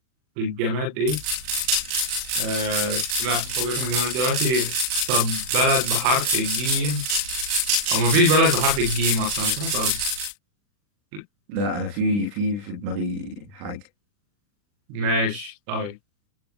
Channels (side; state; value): left; late; 40 ms